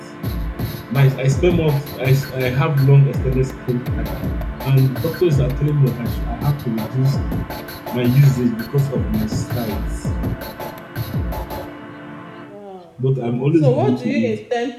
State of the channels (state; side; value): identical; both; correlation 1.00